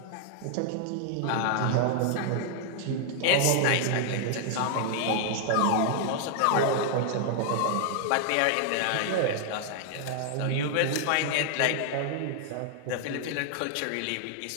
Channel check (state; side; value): different; both; correlation 0.00